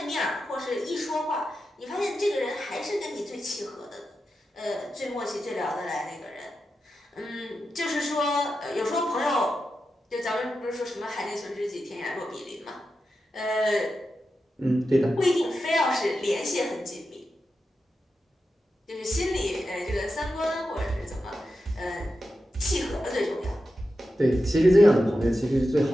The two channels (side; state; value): both; normal; correlation 0.90